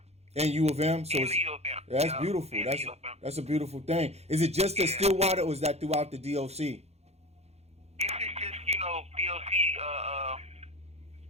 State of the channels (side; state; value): left; late; 0.31 ms